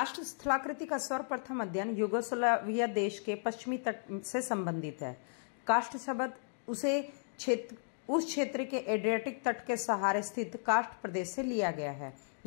स्थलाकृति का सर्वप्रथम अध्ययन यूगोस्लाविया देश के पश्चिमी तट से संबंधित है। कास्ट शब्द उस क्षेत्र के एड्रियाटिक तट के सहारे स्थित कास्ट प्रदेश से लिया गया है।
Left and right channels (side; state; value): right; silent; digital silence